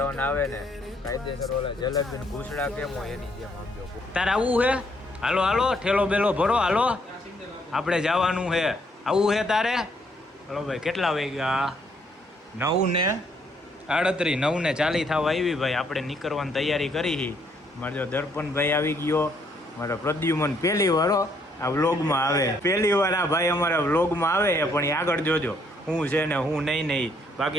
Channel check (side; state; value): both; normal; correlation 0.69